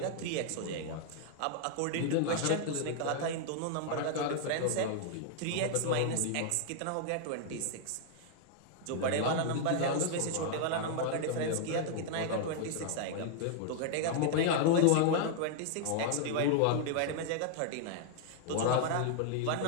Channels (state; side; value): different; both; correlation 0.00